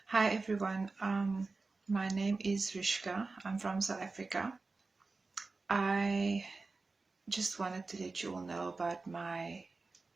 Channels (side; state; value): left; quieter; 3.8 dB